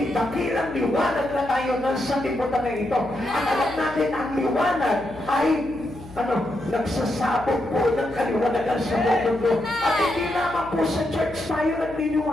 dakilang liwanag na tayo ng sanlibutan na ito. At alam natin, ang liwanag ay nagsasabog po ng kaliwanagan sa mundo. At hindi naman po sa church tayo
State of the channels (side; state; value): left; noise; hum, 18 dB below the sound